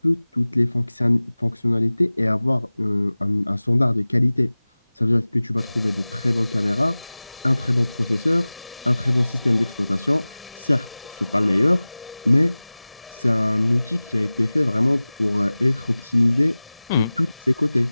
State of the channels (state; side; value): inverted; both; correlation -0.98